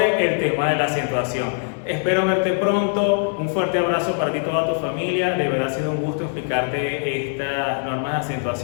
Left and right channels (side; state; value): right; silent; 60 dB below the other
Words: el tema de la acentuación. Espero verte pronto, un fuerte abrazo para ti y toda tu familia. De verdad ha sido un gusto explicarte estas normas de